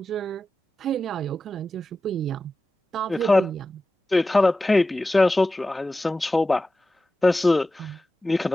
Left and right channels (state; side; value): normal; both; correlation 0.94